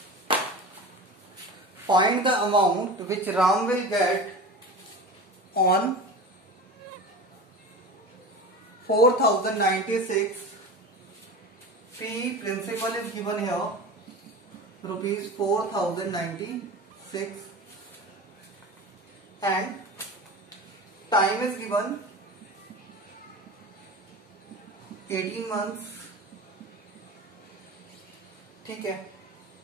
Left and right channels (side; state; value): both; normal; correlation 0.32